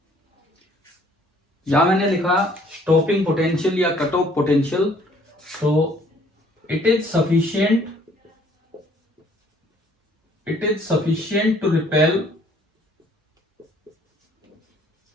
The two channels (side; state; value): both; normal; correlation 0.60